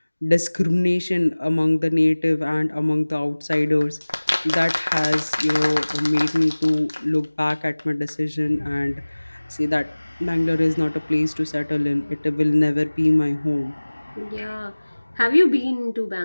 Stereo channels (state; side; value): inverted; both; correlation -1.00